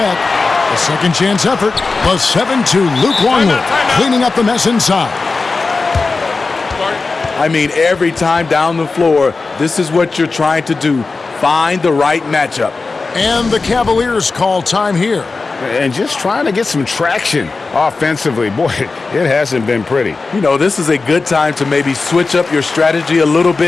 A second chance effort. The 7-2 Luke Longley cleaning up the mess inside. I mean, every time down the floor, this is what you're trying to do. Find the right matchup. And the Cavaliers call time here. And just trying to get some traction offensively. Boy, it hasn't been pretty. You know, this is a good time to maybe switch up your strategy a little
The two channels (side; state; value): right; quieter; 4.0 dB